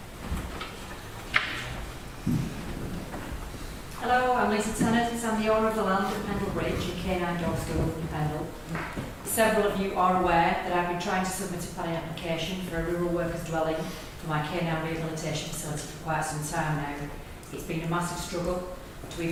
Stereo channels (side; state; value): both; identical; correlation 1.00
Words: Several of you are aware that I've been trying to submit a planning application for a rural workers dwelling for my canine rehabilitation facility for quite some time now. It's been a massive struggle to